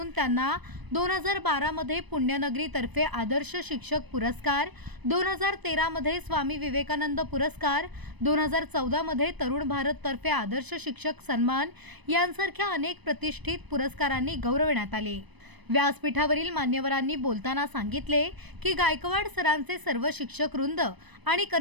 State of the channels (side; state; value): left; late; 1.0 ms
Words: त्यांना 2012 मध्ये पुण्यनगरी तर्फे आदर्श शिक्षक पुरस्कार, 2013 मध्ये स्वामी विवेकानंद पुरस्कार, 2014 मध्ये तरुण भारत तर्फे आदर्श शिक्षक सन्मान यांसारख्या अनेक प्रतिष्ठित पुरस्कारांनी गौरवण्यात आले। व्यासपीठावरील मान्यवरांनी बोलताना सांगितले की गायकवाड सरांचे सर्व शिक्षक वृंद आणि